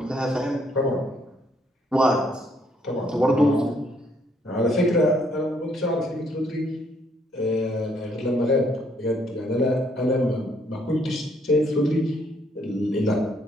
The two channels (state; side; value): normal; both; correlation 0.69